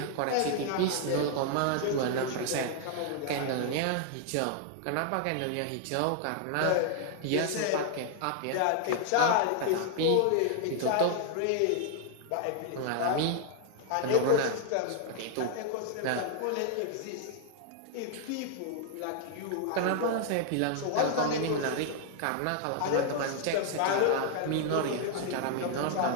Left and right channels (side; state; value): both; different; correlation 0.00